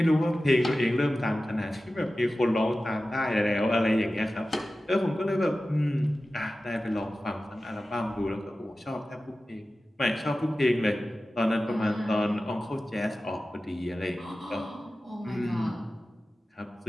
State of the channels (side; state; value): both; normal; correlation 0.95